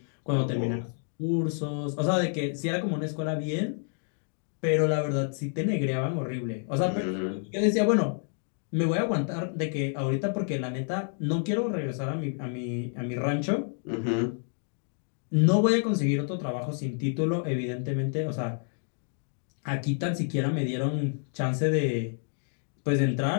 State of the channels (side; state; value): right; silent; 55 dB below the other